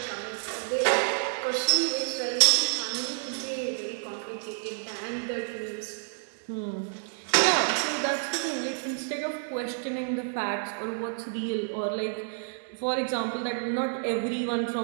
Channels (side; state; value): left; silent; digital silence